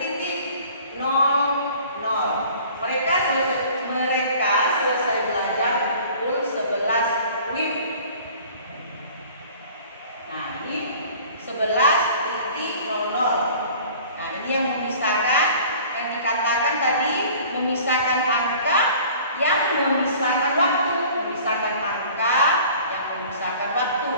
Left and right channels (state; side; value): inverted; both; correlation -0.47